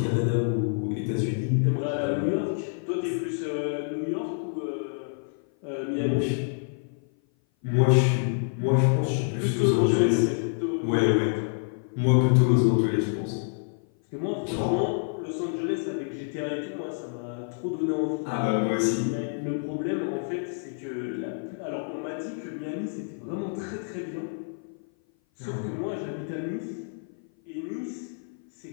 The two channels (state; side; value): silent; right; 56 dB below the other